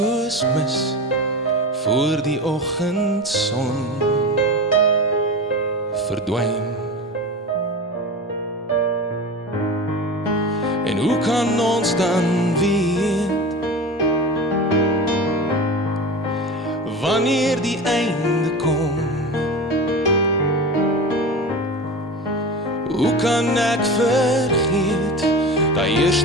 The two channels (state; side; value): normal; both; correlation 0.29